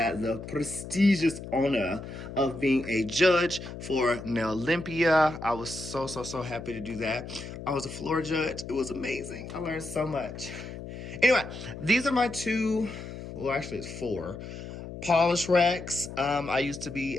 the prestigious honor of being a judge for Nail Olympia. I was so happy to do that. I was a floor judge. It was amazing. I learned so much. Anyway, these are my two, well, actually it's four, polish racks. I used to be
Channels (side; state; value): left; noise; hum, 10 dB below the sound